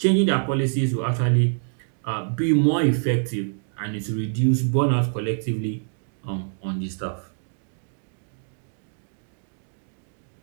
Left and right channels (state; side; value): silent; left; digital silence